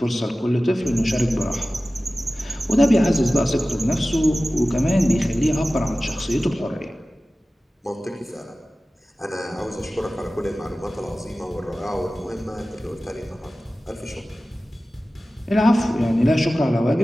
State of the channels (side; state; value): both; normal; correlation 0.96